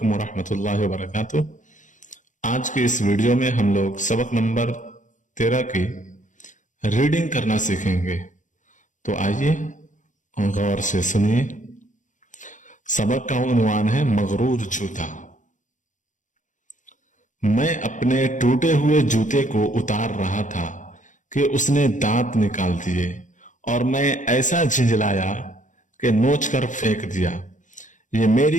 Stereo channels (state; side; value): late; right; 0.37 ms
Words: वरहमतुल्लाहि वबरकातुह। आज के इस वीडियो में हम लोग सबक नंबर 13 की रीडिंग करना सीखेंगे। तो आइए गौर से सुनिए। सबक का उन्वान है मगरूर जूता। मैं अपने टूटे हुए जूते को उतार रहा था कि उसने दांत निकाल दिए और मैं ऐसा झिंझलाया कि नोच कर फेंक दिया। ये